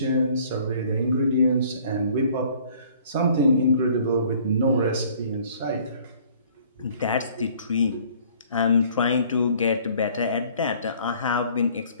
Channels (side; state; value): both; inverted; correlation -0.56